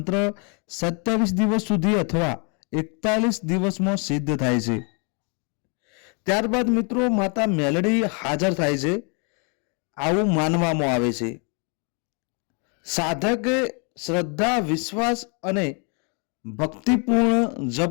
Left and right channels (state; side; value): quieter; right; 36.2 dB